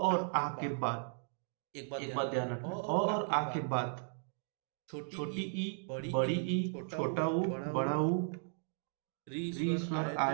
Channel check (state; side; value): silent; left; digital silence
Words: आ के बाद, एक बात ध्यान रखना, अ और आ के बाद छोटी ई, बड़ी ई, छोटा ऊ, बड़ा ऊ, री स्वर